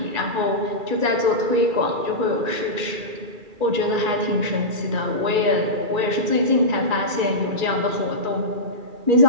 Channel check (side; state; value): left; late; 2.3 ms